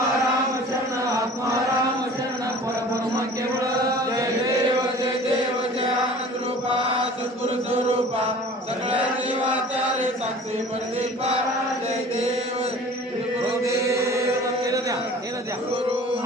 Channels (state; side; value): normal; both; correlation 0.44